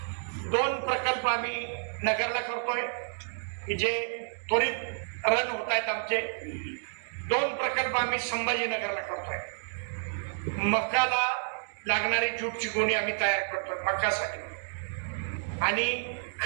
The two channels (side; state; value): left; silent; digital silence